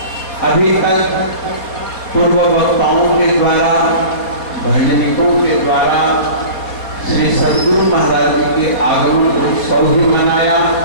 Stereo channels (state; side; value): late; right; 4.2 ms